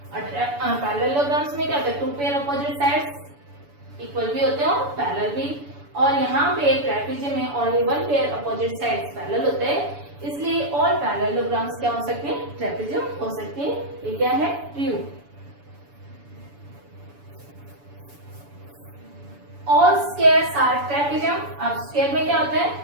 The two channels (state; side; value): late; left; 7.0 ms